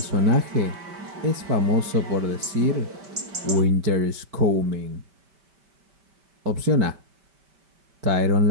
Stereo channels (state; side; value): late; left; 5.1 ms